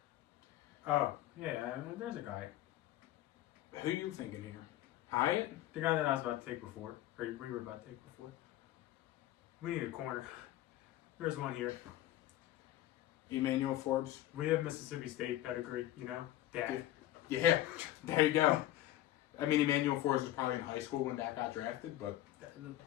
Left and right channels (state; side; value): quieter; right; 14.2 dB